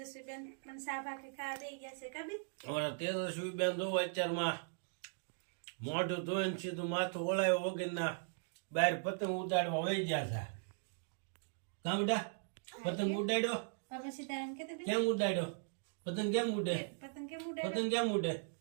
બેન પણ સા ભાખરી ખાવા દઈ ગયા છે. કબી અમારા તેજસ્વી બેન જોવો અત્યારમાં મોઢું ધોઈને સીધું માથું ઓળાયો વગરના બહાર પતંગ ઉડાડવા વહી ગયા છે. કામ બેટા પતંગ ઉડાડ્યો? બાપા સીતારામ કે કેમ ઉડાડ્યો? પતંગ કેમ ઉડે? પતંગ કેમ ઉડે? પતંગ કેમ ઉડે?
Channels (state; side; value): silent; left; digital silence